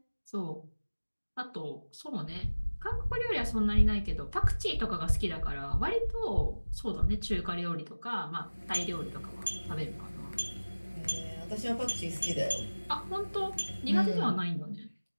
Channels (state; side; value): inverted; both; correlation -1.00